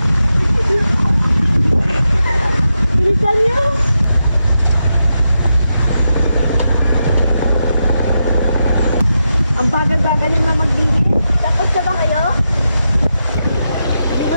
Bilisan niyo! Ang bagal-bagal niyo na magbihis. Tapos na ba kayo? Hindi ko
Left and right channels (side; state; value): both; inverted; correlation -0.87